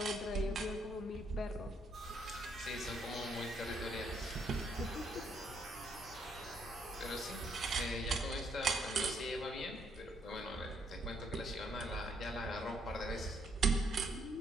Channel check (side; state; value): both; normal; correlation 0.72